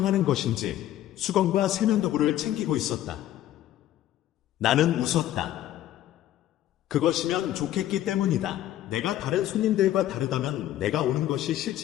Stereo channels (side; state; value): right; quieter; 13.0 dB